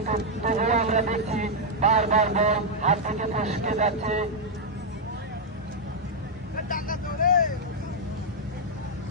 তবুও আমরা দেখছি বারবার বল হাত থেকে ফসকে যাচ্ছে।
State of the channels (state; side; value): normal; both; correlation -0.02